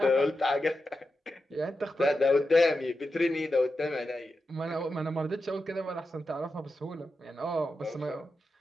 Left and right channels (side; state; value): both; normal; correlation 0.89